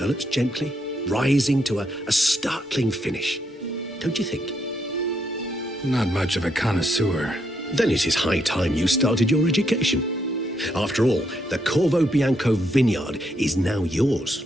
gently, rising to a startling finish. Don't you think? Not much of a connoisseur. Then it is high time you started your education. After all, the Corvo Bianco vineyard is now yours.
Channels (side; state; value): both; normal; correlation 0.77